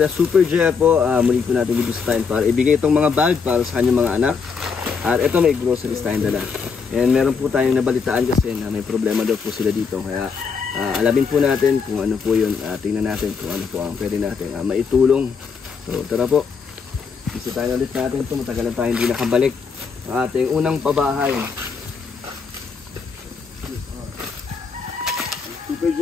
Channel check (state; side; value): quieter; right; 5.6 dB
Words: Super J po. Muli po natin bibisitahin para ibigay itong mga bag para sa kanyang mga anak. At ito may groceries tayong dala. And meron po tayong nabalitaan kasi na may problema daw po sila dito. Kaya alamin po natin kung ano po yun. Tingnan natin kung ano po ang pwede natin maitulong. So tara po, bisitahin ulit natin ito. Matagal na tayo hindi nakabalik ang ating unang pabahay. Super